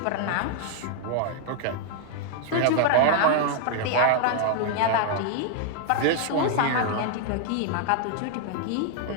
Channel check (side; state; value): both; different; correlation 0.00